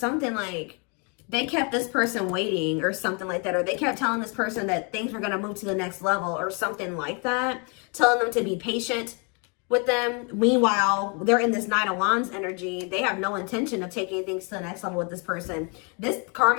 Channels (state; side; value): quieter; right; 34.6 dB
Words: like they kept this person waiting or something like that. Or they kept telling this person that things were going to move to the next level or something like that. Telling them to be patient with them. Meanwhile, they're in this Nine of Wands energy. They have no intention of taking things to the next level with this person. This